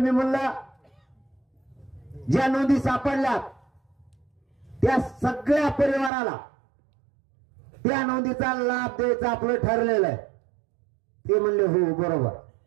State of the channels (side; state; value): left; drops out; at 6.1 s